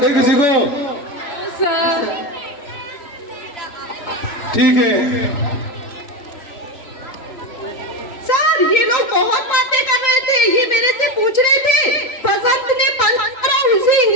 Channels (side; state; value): right; late; 3.8 ms